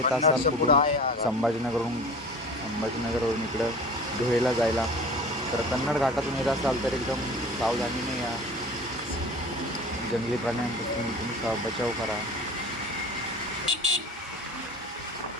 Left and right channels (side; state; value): both; normal; correlation 0.40